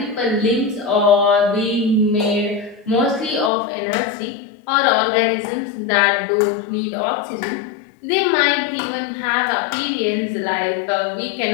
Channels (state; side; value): drops out; right; at 3.5 s